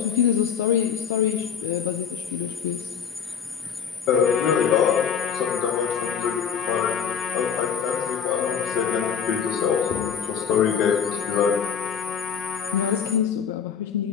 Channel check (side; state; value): right; quieter; 7.2 dB